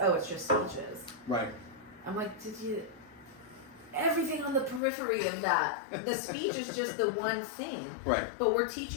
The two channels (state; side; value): drops out; right; at 4.8 s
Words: oh, it's just speeches. Right. I'm like, everything on the periphery of that. The speech is just the one thing. Right. But we're